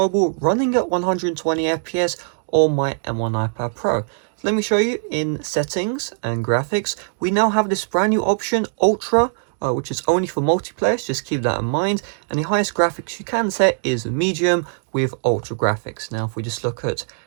running at 120 FPS on my M1 iPad Pro. So let me show you in settings and graphics. We now have this brand new option, Ultra, which is only for multiplayer, so just keep that in mind. And the highest graphics you can set is medium with ultra graphics. Now if we just look at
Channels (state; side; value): silent; left; digital silence